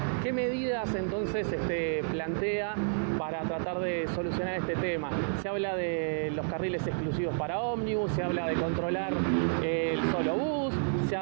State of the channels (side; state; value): left; silent; digital silence